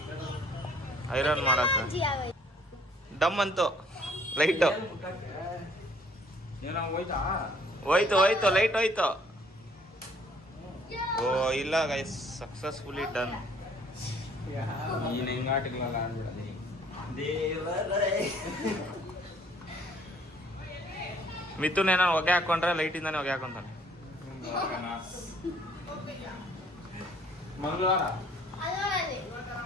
ಐರನ್ ಮಾಡಕ್ಕ. ಡಮ್ ಅಂತು ಲೈಟು ಹೋಯ್ತು ಲೈಟ್ ಹೋಯ್ತು. ಓ ಇಲ್ಲ ಗೈಸ್, ಸಕ್ಸಸ್ಫುಲಿ ಡನ್. ನೀನ್ ಹೆಂಗಾಟಿಗಳಲ್ಲ ಆಡ್ಬಿಡಲಿ ಮಿಥುನ್ ಏನೋ ಹೊಗೆ ಹಾಕೊಂಡ್ರೆ ಲೈಟಿಂದಾನೆ ಹೊಗೆ ಹಾಕೊಂತಾನೆ. ಮಂಗಳವಾರ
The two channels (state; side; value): normal; both; correlation 0.60